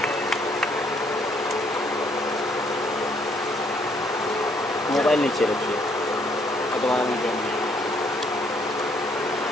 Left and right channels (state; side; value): normal; both; correlation 0.67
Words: मोबाइल नीचे रखिए।